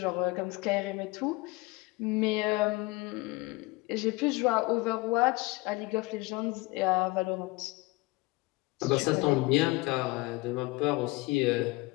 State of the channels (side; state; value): right; quieter; 22.6 dB